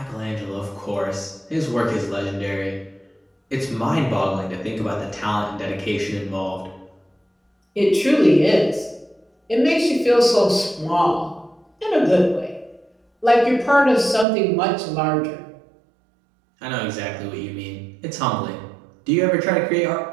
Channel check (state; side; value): drops out; left; at 14.2 s